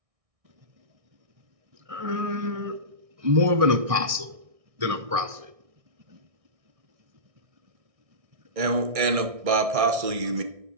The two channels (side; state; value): left; late; 1.6 ms